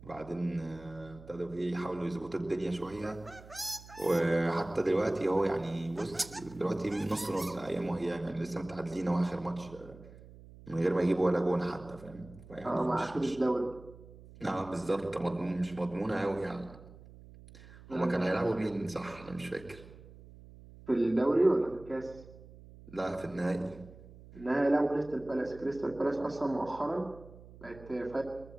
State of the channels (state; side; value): noise; right; hum, 19 dB below the sound